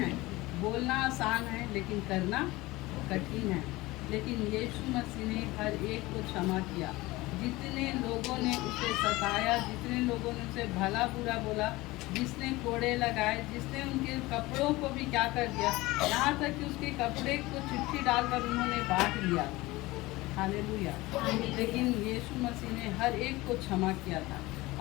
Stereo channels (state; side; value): quieter; right; 20.3 dB